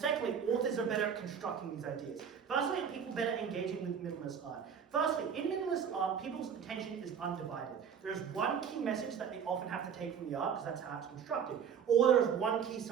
authors are better at constructing these ideas. Firstly, people better engaging with minimalist art. Firstly, in minimalist art, people's attention is undivided. There is one key message that they often have to take from the art, because that's how it's constructed, or there is one key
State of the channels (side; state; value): left; quieter; 7.5 dB